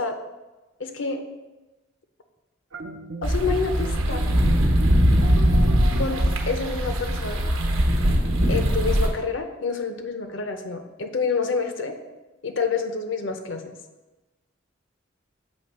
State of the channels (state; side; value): normal; both; correlation 0.72